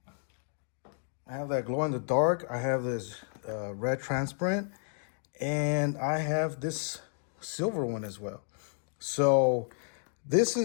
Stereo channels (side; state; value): right; silent; digital silence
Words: I have that glow in the dark. I have this red transparent, and I have this silver one as well. So this